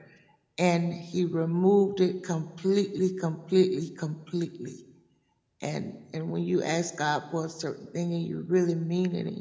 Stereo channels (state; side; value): identical; both; correlation 1.00